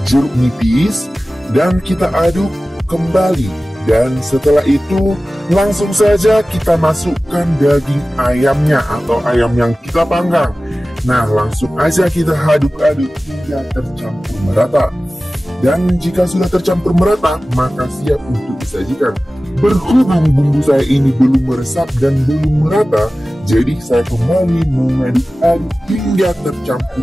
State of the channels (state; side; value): normal; both; correlation 0.96